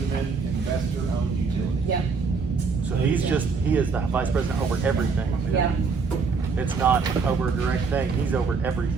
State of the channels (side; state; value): left; quieter; 4.9 dB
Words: Investor Owned Utility. Yep, So he is the vice president over everything. yeah. It's not over a direct thing, he's over